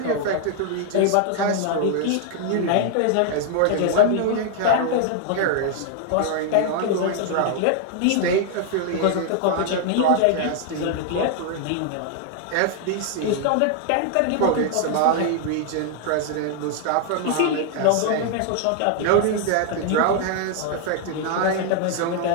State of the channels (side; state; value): both; different; correlation 0.00